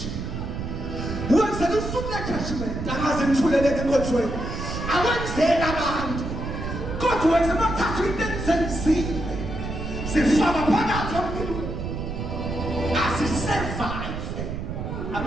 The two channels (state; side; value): noise; right; rumble, 5 dB below the sound